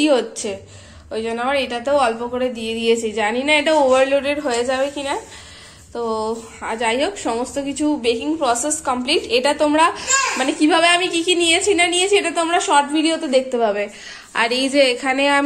হচ্ছে, ওই জন্য আমার এটাতেও অল্প করে দিয়ে দিয়েছি। জানি না এটা ওভারলোডেড হয়ে যাবে কিনা। তো যাই হোক, সমস্ত কিছু বেকিং প্রসেস কমপ্লিট। এটা তোমরা মানে কিভাবে আমি কি কি নিয়েছি না নিয়েছি এটা তোমরা শর্ট ভিডিওতে দেখতে পাবে। আর এই যে এখানে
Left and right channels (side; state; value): both; identical; correlation 1.00